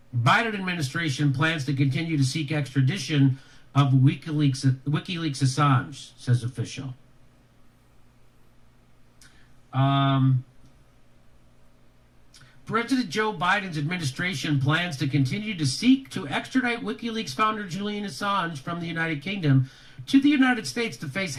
Biden administration plans to continue to seek extradition of WikiLeaks Assange, says official. President Joe Biden's administration plans to continue to seek to extradite WikiLeaks founder Julian Assange from the United Kingdom to the United States to face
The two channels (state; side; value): identical; both; correlation 1.00